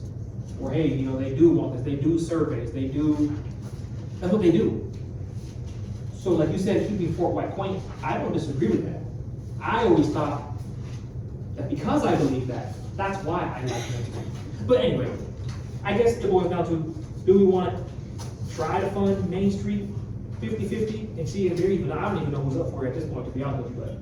Or, hey, you know, they do want this, they do surveys, that's what they do. So like you said, keeping Fort White quaint, I don't disagree with that. I always thought that because I believe that, that's why I like Main Street. But anyway, I guess it boils down to, do we wanna try to fund Main Street 50-50 and see if they're even, I don't even know who's up for it at this point, to be honest with you, but.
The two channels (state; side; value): identical; both; correlation 1.00